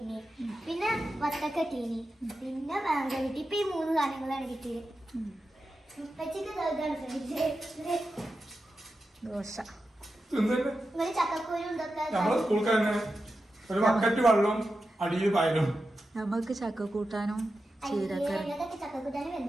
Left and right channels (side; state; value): both; normal; correlation 0.91